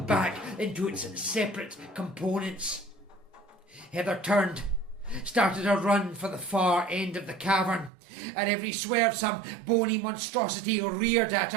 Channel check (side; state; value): left; drops out; at 7.9 s